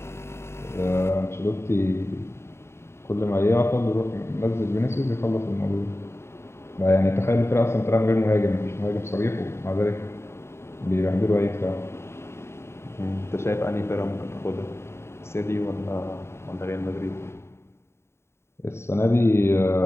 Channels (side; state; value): right; late; 0.13 ms